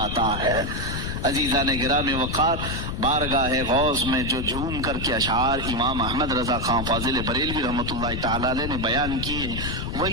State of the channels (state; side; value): noise; left; rumble, 4 dB below the sound